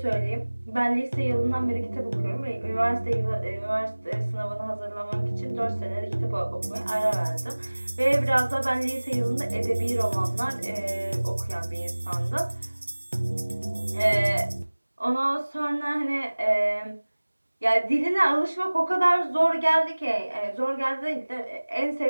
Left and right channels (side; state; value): both; inverted; correlation -1.00